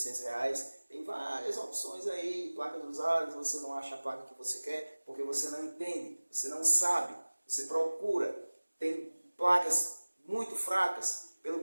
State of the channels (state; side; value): inverted; both; correlation -1.00